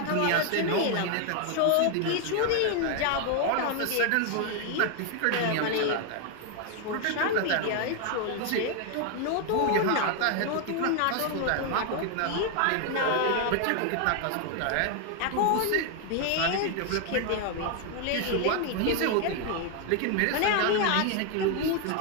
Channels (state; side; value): different; both; correlation 0.01